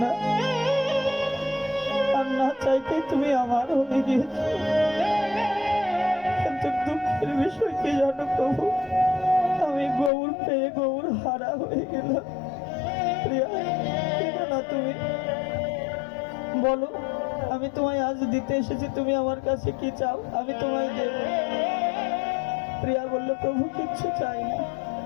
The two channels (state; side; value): drops out; right; at 10.1 s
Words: না, আর না চাইতেই তুমি আমার হয়ে গিয়েছো। কিন্তু দুঃখের বিষয় কি জানো প্রভু, আমি গৌর পেয়ে গৌর হারা হয়ে গেলাম। প্রিয়া, কেঁদো না তুমি, বলো আমি তোমায় আজ দিতে এসেছি, তুমি আমার কাছে কি চাও, আমি তোমায় দেব। প্রিয়া বলল, প্রভু কিচ্ছু চাই না,